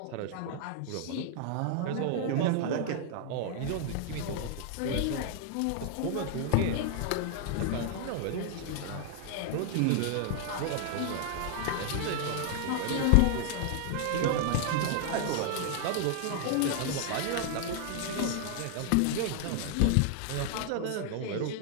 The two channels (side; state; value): both; different; correlation 0.00